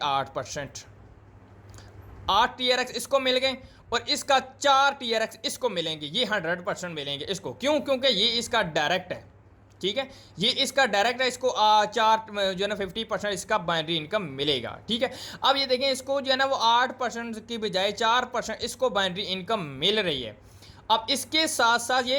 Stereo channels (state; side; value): identical; both; correlation 1.00